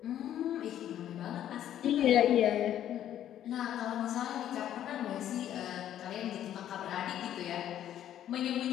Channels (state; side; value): quieter; right; 11.2 dB